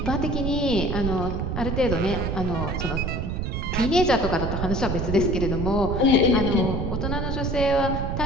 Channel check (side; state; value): right; noise; rumble, 2 dB below the sound